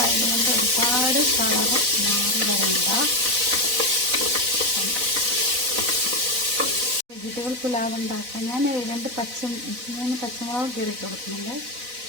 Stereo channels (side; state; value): left; late; 4.0 ms